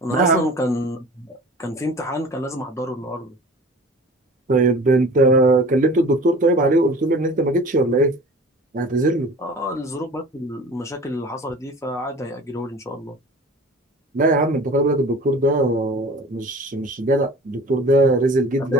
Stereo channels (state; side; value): normal; both; correlation 0.42